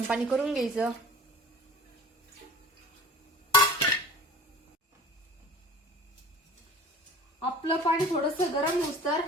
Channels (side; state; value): both; normal; correlation 0.42